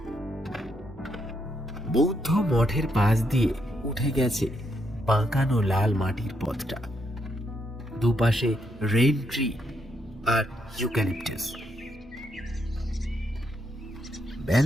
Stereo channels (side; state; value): both; normal; correlation 0.77